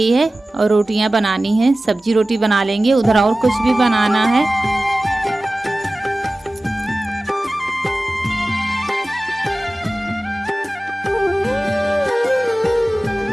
है और रोटियां बनानी है। सब्जी रोटी बना लेंगे, उधर और कुछ भी बनाना है।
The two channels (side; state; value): both; normal; correlation 0.97